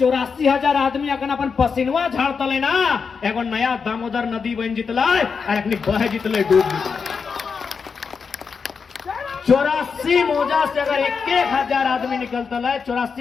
आदमी अगर अपन पसीनवा झाड़ता ले ना, एगो नया दामोदर नदी बन जितला और अपनी बह जितले डूब जितले। 84 मौजा से अगर 1,000 आदमी निकलता है,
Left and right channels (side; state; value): right; quieter; 5.6 dB